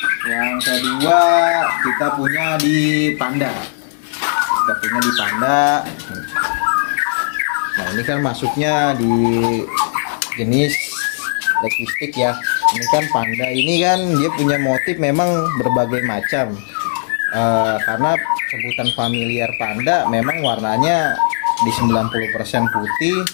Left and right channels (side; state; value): right; silent; digital silence